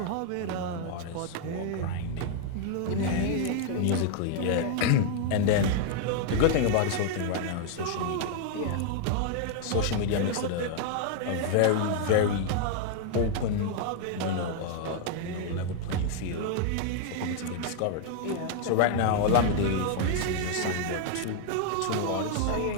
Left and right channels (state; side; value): different; both; correlation 0.00